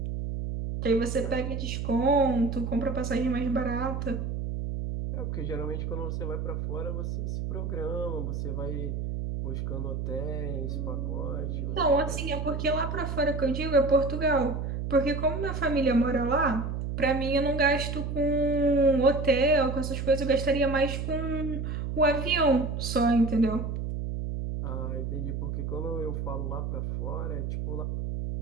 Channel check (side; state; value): right; noise; hum, 3 dB below the sound